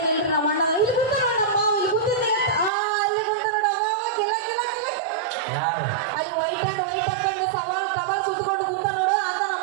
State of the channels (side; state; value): left; drops out; at 2.7 s